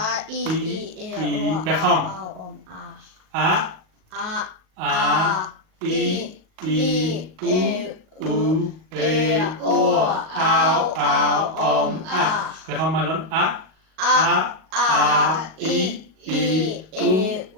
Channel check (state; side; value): late; left; 38 ms